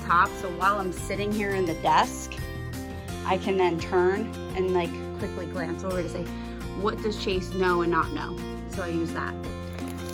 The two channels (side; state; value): both; identical; correlation 1.00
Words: top. So while I'm sitting here in the desk, I can then turn and like quickly glance over to say, what does Chase know and not know? So I use that.